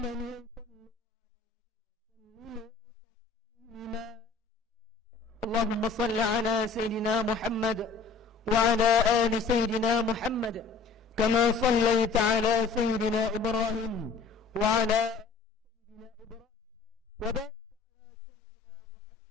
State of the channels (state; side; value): quieter; right; 4.8 dB